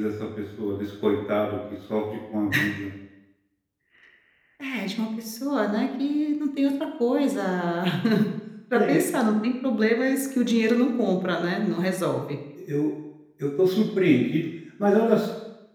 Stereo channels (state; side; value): identical; both; correlation 1.00